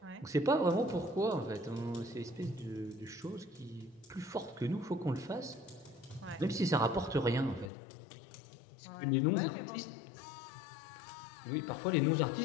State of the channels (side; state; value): right; drops out; at 7.7 s